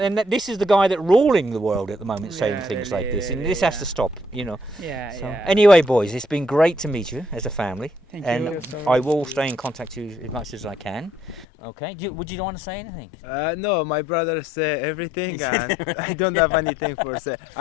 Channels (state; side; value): drops out; right; at 11.5 s